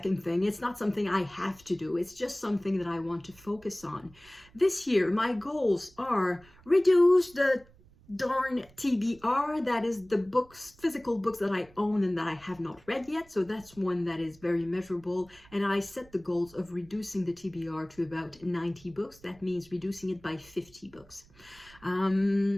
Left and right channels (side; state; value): right; noise; rumble, 26 dB below the sound